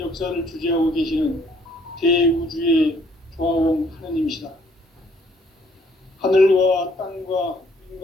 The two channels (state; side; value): normal; both; correlation 0.63